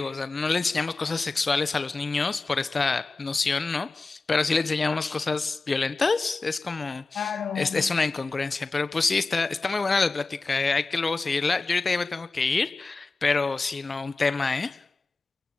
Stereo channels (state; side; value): quieter; right; 3.7 dB